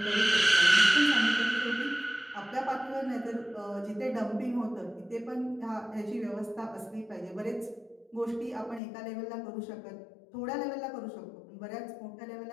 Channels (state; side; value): drops out; right; at 8.8 s